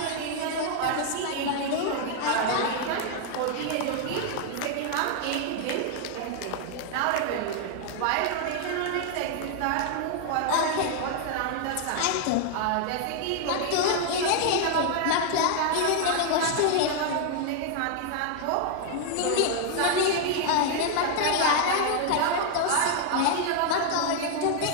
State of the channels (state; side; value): different; both; correlation 0.00